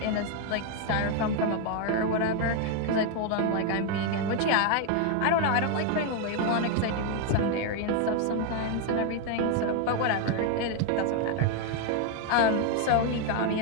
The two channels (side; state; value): both; different; correlation 0.01